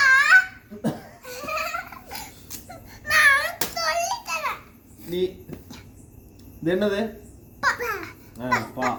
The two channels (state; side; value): identical; both; correlation 1.00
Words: நான் சொல்லி தரேன். நீ இது என்னது? பா